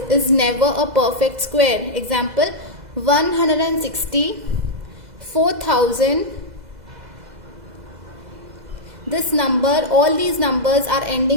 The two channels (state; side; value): late; left; 2.0 ms